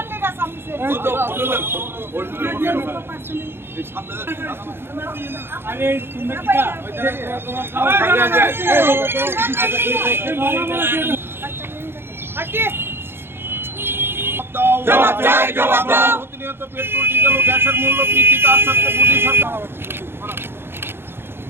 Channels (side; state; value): left; late; 0.11 ms